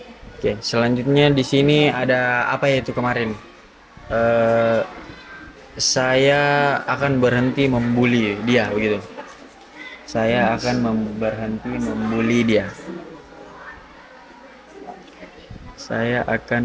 Oke, selanjutnya di sini ada apa ya itu kemarin? Saya akan berhenti membuli dia begitu. Saya akan berhenti membuli dia. Saya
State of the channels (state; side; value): identical; both; correlation 1.00